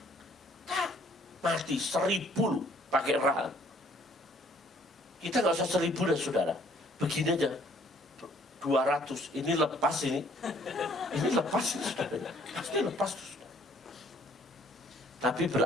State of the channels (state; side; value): normal; both; correlation 0.60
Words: Mati 1000 pakai rahang. Kita nggak usah 1000 dah, saudara. Begini aja. 200. Ini lepas ini. Ini lepas ini, saudara. Pasti lepas. Tapi